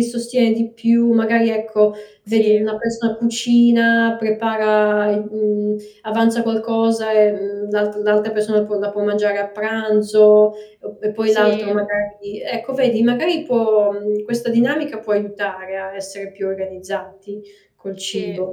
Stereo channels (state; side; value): identical; both; correlation 1.00